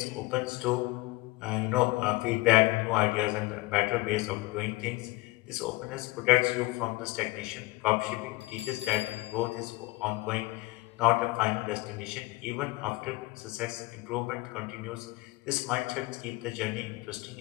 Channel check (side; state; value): right; quieter; 21.8 dB